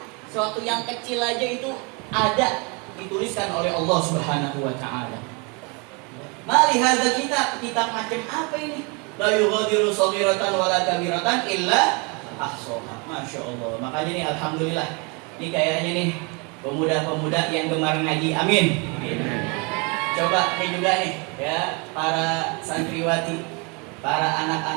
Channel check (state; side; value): quieter; left; 31.6 dB